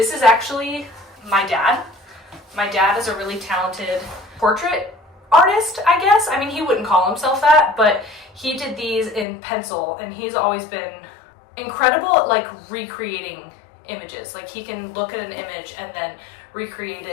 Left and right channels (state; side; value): drops out; right; at 9.2 s